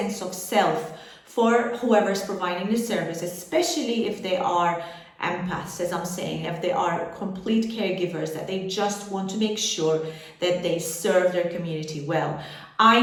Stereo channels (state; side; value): identical; both; correlation 1.00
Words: of self for whoever's providing the service, especially if they are empaths, as I'm saying, if they are complete caregivers, that they just want to make sure that they serve their community well.